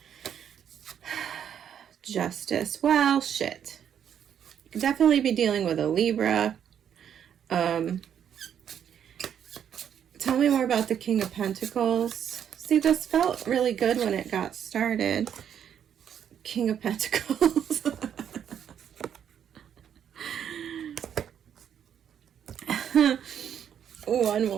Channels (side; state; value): left; quieter; 8.9 dB